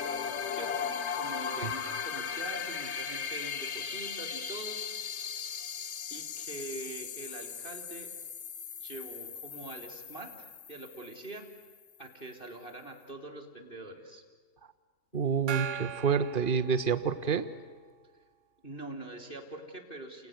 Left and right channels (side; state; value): right; late; 3.2 ms